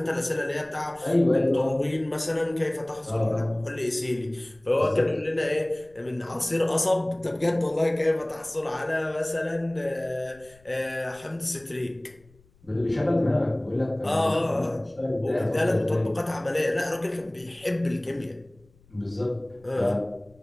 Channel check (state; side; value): noise; left; rumble, 29 dB below the sound